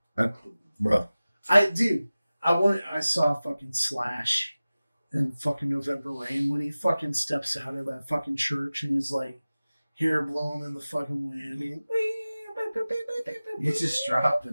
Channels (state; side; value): inverted; both; correlation -0.97